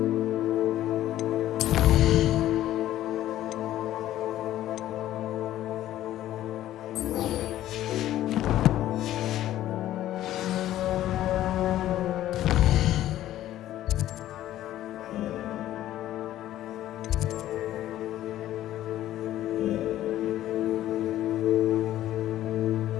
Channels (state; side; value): quieter; right; 13.4 dB